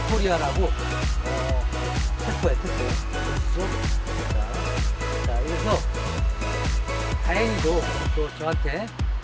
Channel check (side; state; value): both; identical; correlation 1.00